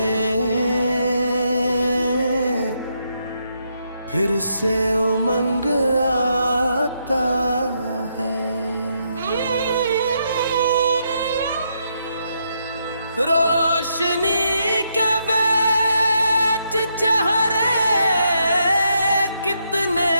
फिर से उमंग आता है। रोशनी के बेच चेहरे कितने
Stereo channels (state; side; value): inverted; both; correlation -0.78